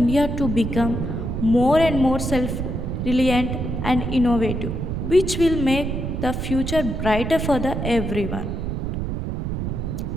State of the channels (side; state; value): right; noise; rumble, 3 dB below the sound